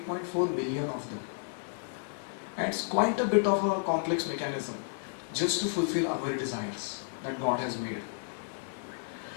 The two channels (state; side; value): silent; right; 56 dB below the other